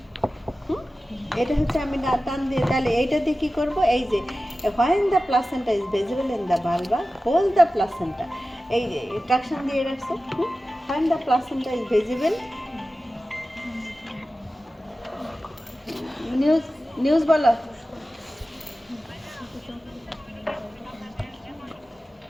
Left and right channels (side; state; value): both; normal; correlation 0.95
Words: এটা হচ্ছে আমি টান দিয়ে, তাহলে এইটা দিয়ে কি করব? এই যে when the placenta is visible in the vulva, hold the placenta, এই যে ট্রাকশন দিয়ে রাখছো। when the placenta is visible, news বলো।